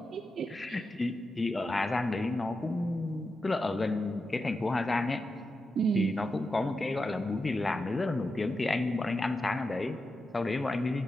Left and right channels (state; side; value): normal; both; correlation 0.89